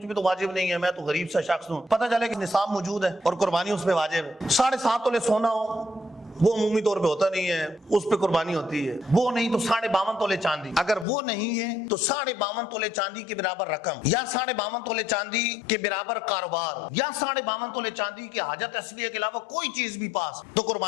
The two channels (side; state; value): right; drops out; at 11.1 s